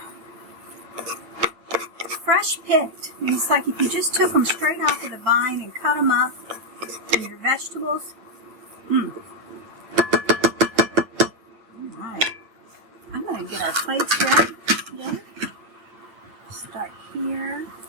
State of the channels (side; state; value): left; late; 9.2 ms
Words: fresh picked. It's like if you just took them straight off of the vine and cut them up in your vegetables. Alright. I'm going to get our plates ready again. Start here.